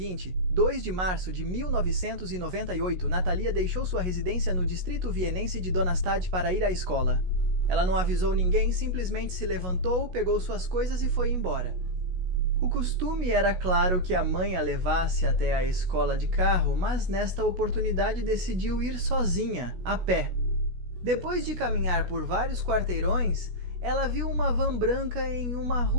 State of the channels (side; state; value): left; late; 16 ms